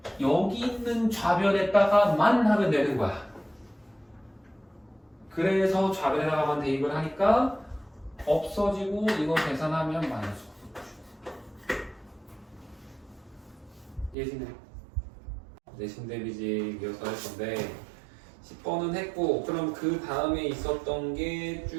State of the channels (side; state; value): left; drops out; at 14.2 s